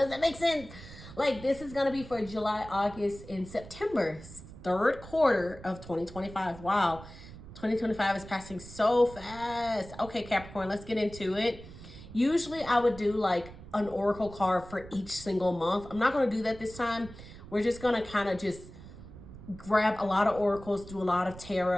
that make sense? Like, this is going to be for July, August, and September, third quarter of 2025. Wow. 2025 is passing so fast. Okay, Capricorn, let's get into it. Usually I would do like an oracle card for each single month. I'm not going to do that this time. We're just going to kind of just grab a lot of oracles, do a lot of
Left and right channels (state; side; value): noise; right; rumble, 16 dB below the sound